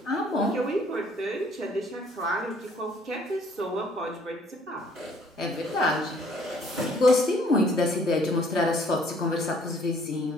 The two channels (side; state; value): both; normal; correlation 0.60